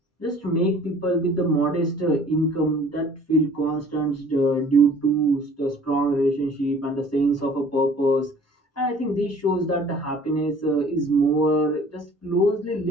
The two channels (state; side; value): normal; both; correlation 0.51